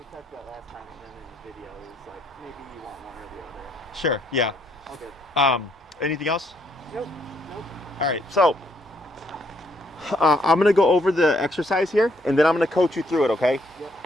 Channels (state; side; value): normal; both; correlation 0.71